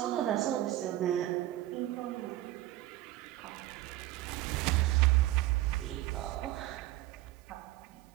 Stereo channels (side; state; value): left; quieter; 15.6 dB